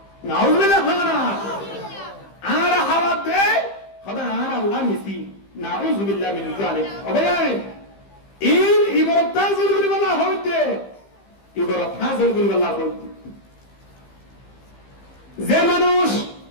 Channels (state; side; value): late; right; 15 ms